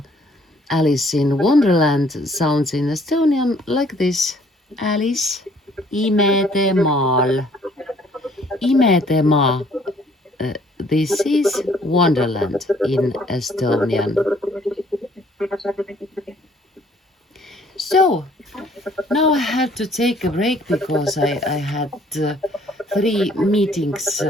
Alice in Wonderland, sounds in Estonian like this. Alice imedemaal. Imedemaa. This is Wonderland in Estonian. So, now I had to take a break because I had 3 meetings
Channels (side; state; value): both; normal; correlation 0.60